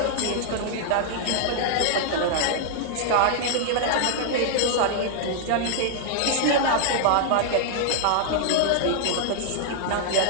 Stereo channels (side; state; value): both; different; correlation -0.01